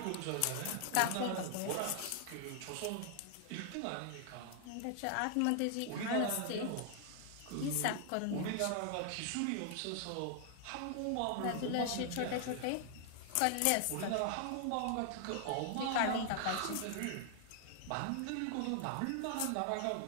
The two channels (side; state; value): both; different; correlation 0.00